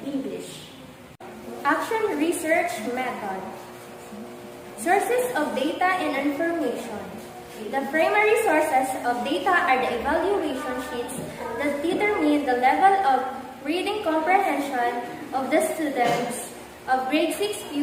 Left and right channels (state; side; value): identical; both; correlation 1.00